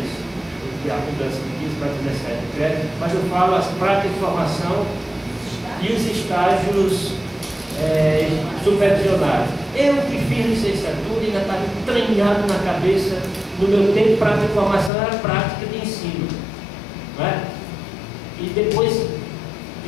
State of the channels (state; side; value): drops out; right; at 14.9 s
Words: isso. E a mudança de 15 para 17 créditos, mas eu falo as práticas de formação e os estágios supervisionados. Eu que fiz licenciatura ainda estava entranhado na cabeça, no meu tempo, prática de formação era prática de ensino. Não é? E depois